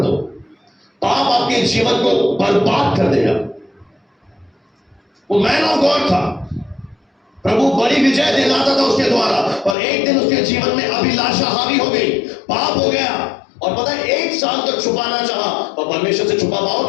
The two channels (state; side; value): drops out; right; at 9.8 s